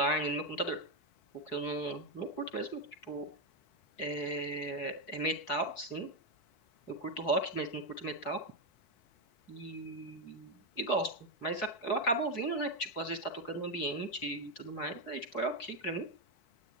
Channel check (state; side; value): late; right; 4.6 ms